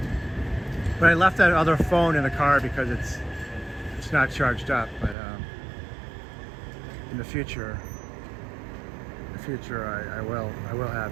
But I left that other phone in the car because it's not charged up. But in the future, I will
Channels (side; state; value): left; drops out; at 5.2 s